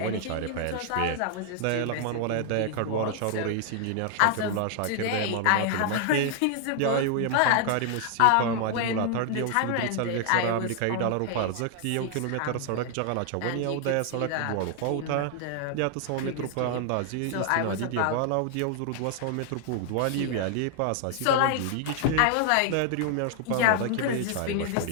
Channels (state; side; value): different; both; correlation 0.00